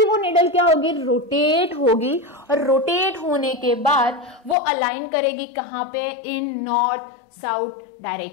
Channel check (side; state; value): right; drops out; at 4.5 s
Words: वो निडल क्या होगी, रोटेट होगी, और रोटेट होने के बाद वो अलाइन करेगी कहां पे, इन नॉर्थ साउथ